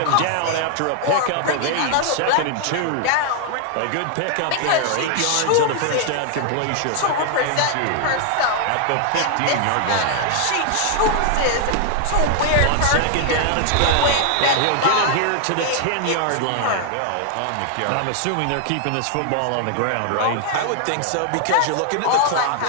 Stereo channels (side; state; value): both; different; correlation 0.00